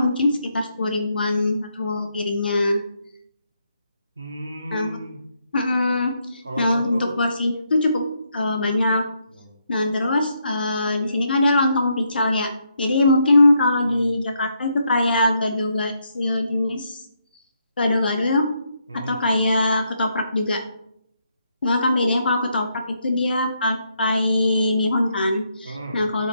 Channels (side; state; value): both; inverted; correlation -0.77